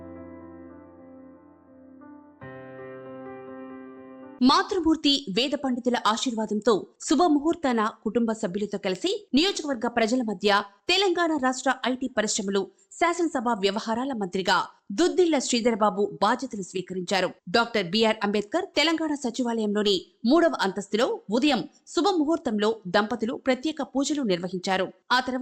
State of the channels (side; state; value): both; identical; correlation 1.00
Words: మాతృమూర్తి వేద పండితుల ఆశీర్వాదంతో శుభముహూర్తాన కుటుంబ సభ్యులతో కలిసి నియోజకవర్గ ప్రజల మధ్య తెలంగాణ రాష్ట్ర ఐటీ పరిశ్రమలు శాసనసభ వ్యవహారాల మంత్రిగా దుద్దిళ్ల శ్రీధరబాబు బాధ్యతలు స్వీకరించారు. డాక్టర్ బిఆర్ అంబేద్కర్ తెలంగాణ సచివాలయంలోని 3వ అంతస్తులో ఉదయం శుభముహూర్తంలో దంపతులు ప్రత్యేక పూజలు నిర్వహించారు. ఆ